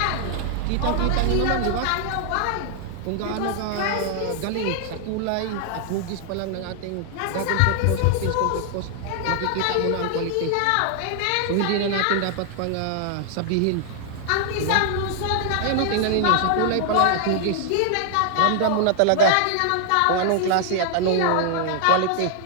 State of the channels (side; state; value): both; different; correlation 0.00